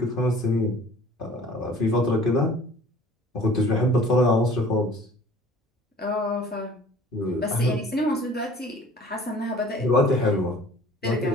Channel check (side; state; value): both; normal; correlation 0.49